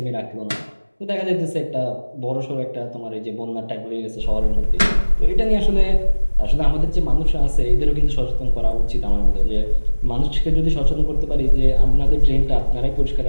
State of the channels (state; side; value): inverted; both; correlation -1.00